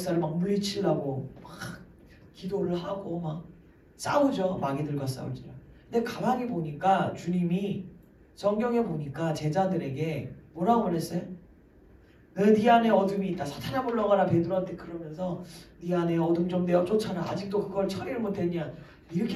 막 물리치려고 막 기도를 하고 막 싸우죠. 마귀들과 싸울지라. 근데 가만히 보니까 주님이 성경에 보니까 제자들에게 뭐라고 그랬어요? 네 안에 어둠이 있다. 사탄아 물러가라. 베드로한테 그러면서 네 안에 어둠 좀 내어 쫓아라. 아직도 그걸 처리를 못했냐.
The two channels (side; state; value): both; identical; correlation 1.00